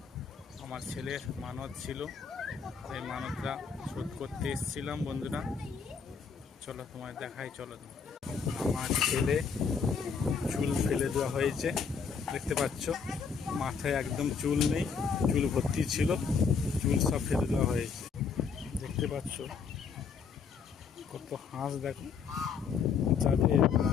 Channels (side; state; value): right; quieter; 5.9 dB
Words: আমার ছেলের মানত ছিল, এই মানতটা শোধ করতে এসেছিলাম। বন্ধুরা চলো তোমায় দেখাই, চলো। আমার ছেলে চুল ফেলে দেওয়া হয়েছে, দেখতে পাচ্ছ। মাথায় একদম চুল নেই, চুল ভর্তি ছিল, চুল সব ফেলে দেওয়া হয়েছে। দেখতে পাচ্ছ কত হাঁস, দেখো। যাদের